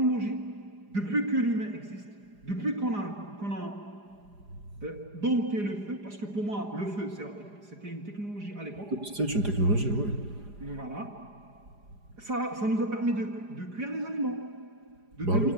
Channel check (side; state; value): left; late; 4.9 ms